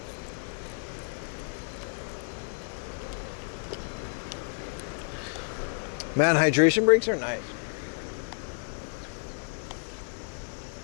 Man, hydration breaks are nice.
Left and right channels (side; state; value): right; silent; 57 dB below the other